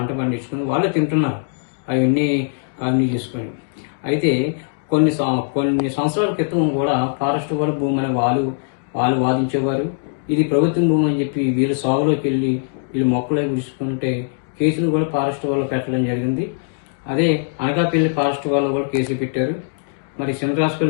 పండించుకుని వాళ్ళే తింటున్నారు, అవన్నీ కాలనీ చేసుకొని. అయితే కొన్ని సంవత్సరాల క్రితం కూడా ఫారెస్ట్ వాళ్ళ భూమి అని వాళ్ళు వాదించేవారు. ఇది ప్రభుత్వం భూమి అని చెప్పి వీళ్ళు సాగులోకి వెళ్ళి వీళ్ళు మొక్కలే గుడుచుకుంటే కేసులు కూడా ఫారెస్ట్ వాళ్ళు పెట్టడం జరిగింది. అదే అనకాపల్లి ఫారెస్ట్ వాళ్ళు కూడా కేసులు పెట్టారు. మరి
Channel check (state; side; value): silent; right; digital silence